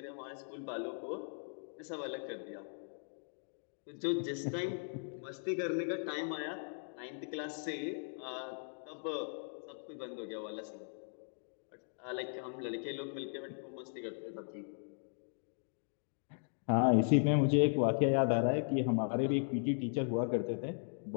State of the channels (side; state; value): right; silent; digital silence